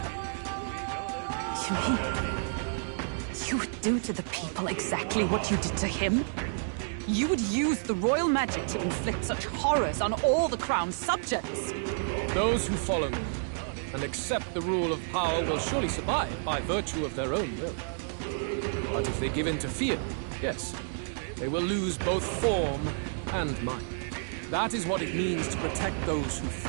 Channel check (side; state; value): left; silent; digital silence